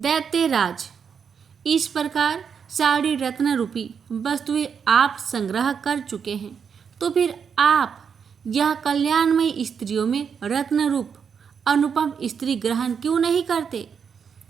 इस प्रकार सारी रत्न रूपी वस्तुएं आप संग्रह कर चुके हैं, तो फिर आप यह कल्याणमयी स्त्रियों में रत्न रूप अनुपम स्त्री ग्रहण क्यों नहीं करते?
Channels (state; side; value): quieter; left; 6.8 dB